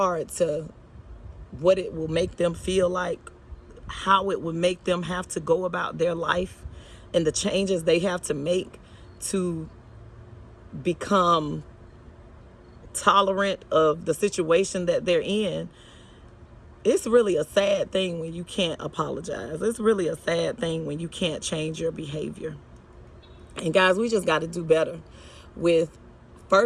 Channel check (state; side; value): identical; both; correlation 1.00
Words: to what it will make them feel like, how it would make them have to go about their life, and the changes they have to make to become tolerant of the situation that they're in, it's really a sad thing when you can't apologize. It's really a sad thing when you can't change your behavior. And guys, we just got to do better with,